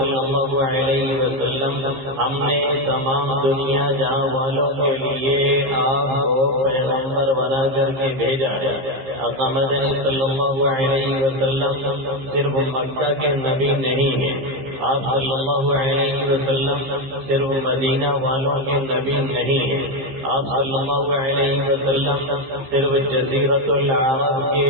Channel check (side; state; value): left; late; 15 ms